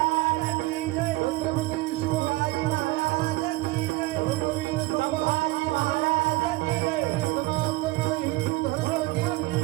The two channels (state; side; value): quieter; left; 19.9 dB